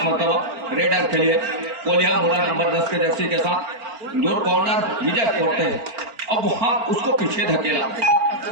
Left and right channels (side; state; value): left; late; 4.4 ms